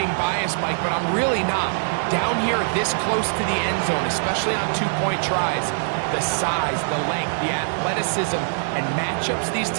biased, Mike, but I'm really not. Down here this close to the end zone, especially on 2-point tries, the size, the length, the athleticism, and matchups these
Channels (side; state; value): left; silent; digital silence